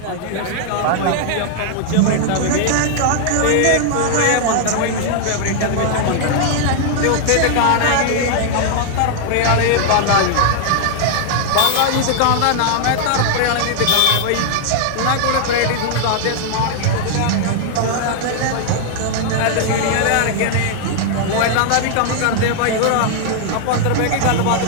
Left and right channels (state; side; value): different; both; correlation -0.01